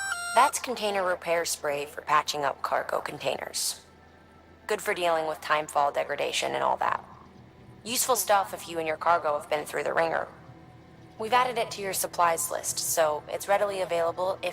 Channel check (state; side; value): identical; both; correlation 1.00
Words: That's container repair spray for patching up cargo containers. Good for dealing with timefall degradation and all that. Useful stuff if you and your cargo have been through the ringer. We've added it to your supplies list, so it's readily available